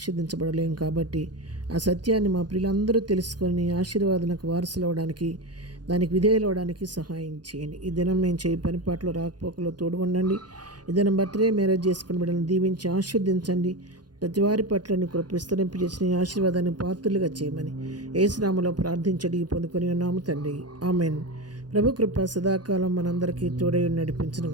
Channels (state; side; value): late; left; 0.69 ms